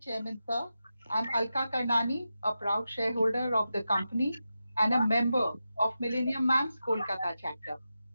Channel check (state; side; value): inverted; both; correlation -0.91